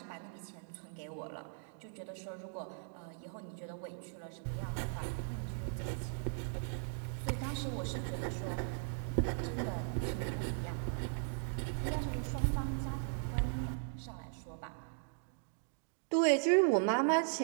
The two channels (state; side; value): silent; left; digital silence